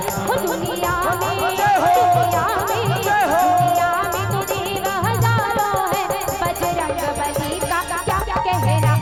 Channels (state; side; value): identical; both; correlation 1.00